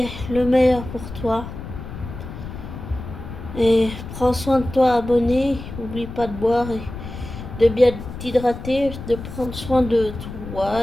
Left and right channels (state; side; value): noise; left; rumble, 10 dB below the sound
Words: le meilleur pour toi. Et prends soin de toi, abonné. N'oublie pas de boire et de bien t'hydrater, de prendre soin de